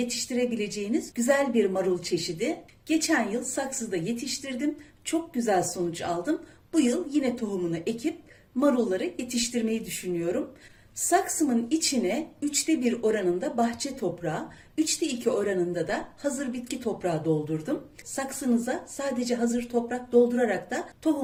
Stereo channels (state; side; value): identical; both; correlation 1.00